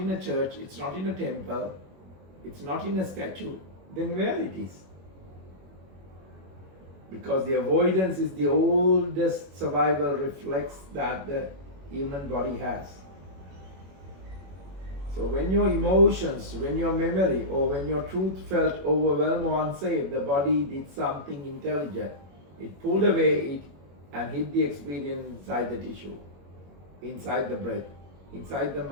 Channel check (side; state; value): left; late; 21 ms